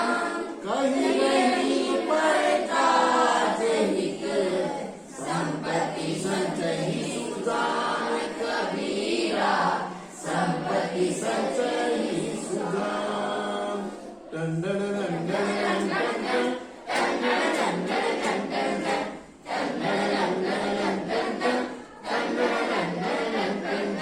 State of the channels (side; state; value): both; identical; correlation 1.00